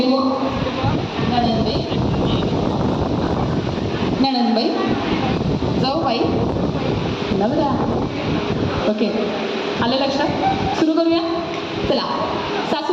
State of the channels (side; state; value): both; identical; correlation 1.00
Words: नणंदबाई नणंदबाई जाऊबाई नवरा. ओके, आलं लक्षात? सुरू करूया. चला,